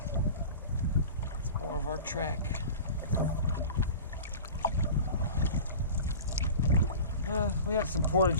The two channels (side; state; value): both; inverted; correlation -0.36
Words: It's more of our track. We had some